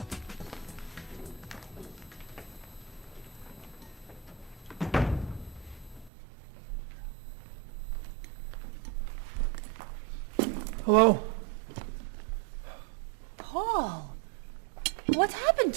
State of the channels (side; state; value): left; drops out; at 6.1 s